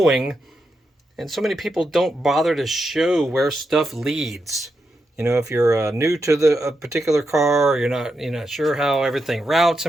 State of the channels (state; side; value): normal; both; correlation 0.85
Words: And so many people don't bother to show where stuff leads. If you're new to a particular car, or you're not sure how everything routes